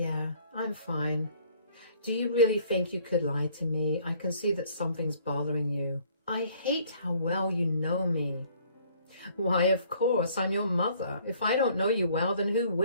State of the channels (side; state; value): both; inverted; correlation -0.58